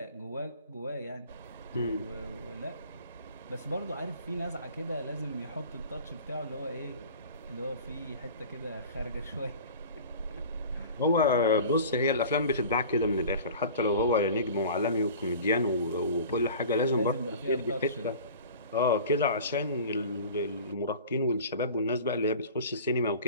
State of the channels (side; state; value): both; inverted; correlation -0.40